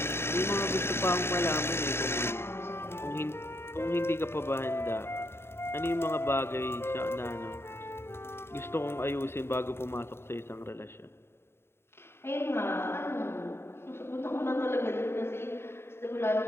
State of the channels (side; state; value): right; late; 0.12 ms